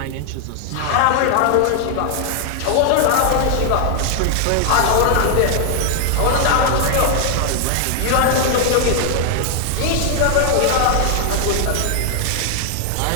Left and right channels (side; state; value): both; different; correlation 0.00